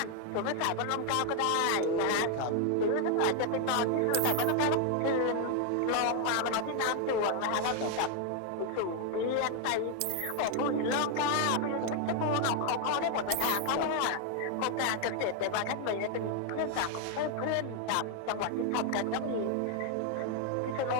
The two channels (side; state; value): both; different; correlation 0.00